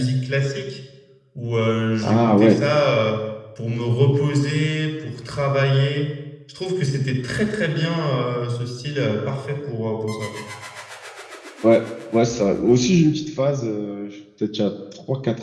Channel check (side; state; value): both; identical; correlation 1.00